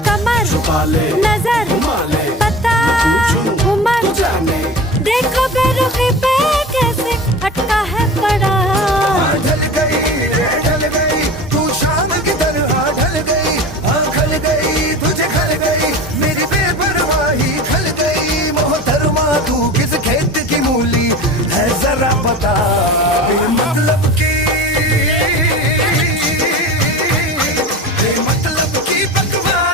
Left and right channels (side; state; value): both; normal; correlation 0.33